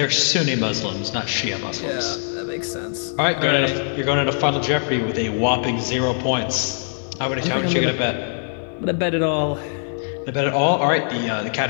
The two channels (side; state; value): right; silent; 64 dB below the other